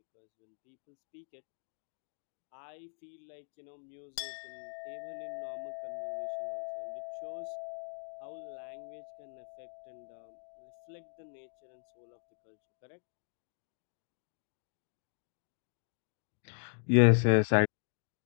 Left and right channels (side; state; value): right; silent; 52 dB below the other